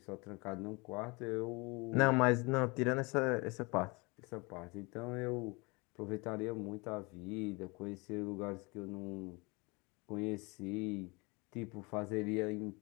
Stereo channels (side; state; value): right; quieter; 27.5 dB